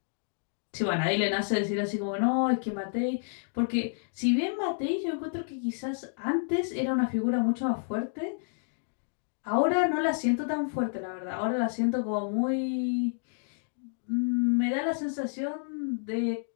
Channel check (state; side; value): silent; right; digital silence